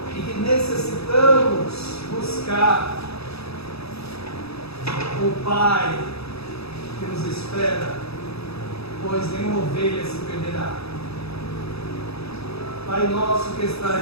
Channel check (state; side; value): late; right; 0.78 ms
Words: e que necessitamos buscar o Pai que nos espera, pois nenhuma ovelha se perderá. Pai nosso que